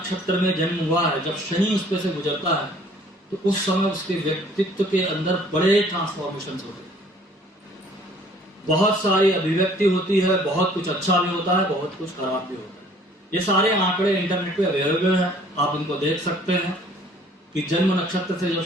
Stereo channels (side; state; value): both; normal; correlation 0.56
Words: में जन्म हुआ है, जब शनि उस पर से गुजरता है तो उस समय उसके व्यक्तित्व के अंदर बड़े ट्रांसफॉर्मेशन होते हैं। बहुत सारी अभिव्यक्ति होती है, बहुत कुछ अच्छा भी होता है, बहुत कुछ खराब भी होता है। ये सारे आंकड़े इंटरनेट पे अवेलेबल हैं, आप इनको देख सकते हैं कि जन्म नक्षत्र से जब